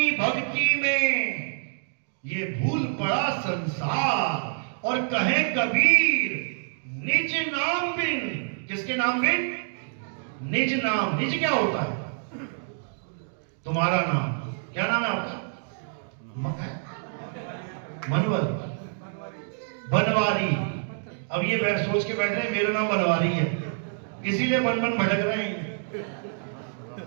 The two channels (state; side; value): silent; left; digital silence